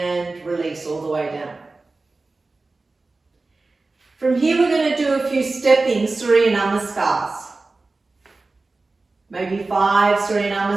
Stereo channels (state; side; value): quieter; left; 3.5 dB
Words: release all the way down. From here we're going to do a few stepping Surya Namaskars. Maybe 5 Surya